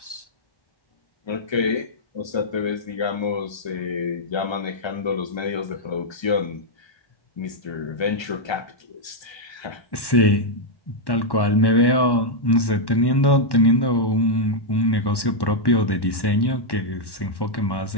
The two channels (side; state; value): right; late; 1.1 ms